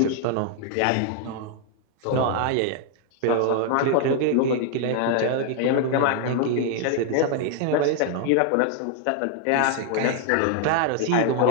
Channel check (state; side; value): different; both; correlation 0.00